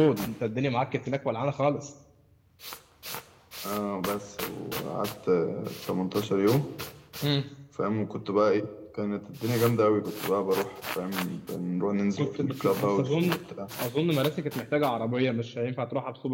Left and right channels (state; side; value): identical; both; correlation 1.00